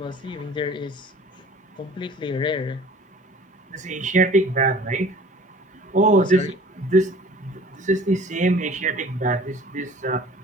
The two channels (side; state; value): both; normal; correlation 0.47